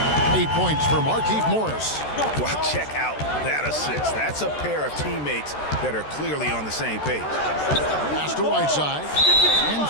8 points for Markieff Morris. Well, check out that assist. That's a pair of teammates that are clearly on the same page. Pass to Whiteside. And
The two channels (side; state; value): right; late; 13 ms